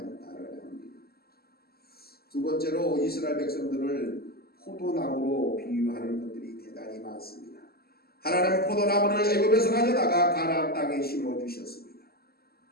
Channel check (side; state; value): right; late; 0.45 ms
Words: 합니다. 두 번째로 이스라엘 백성들을 포도나무로 비유하는 것들이 대단히 많습니다. 하나님은 포도나무를 애굽에서 가져다가 가나안 땅에 심어주셨습니다.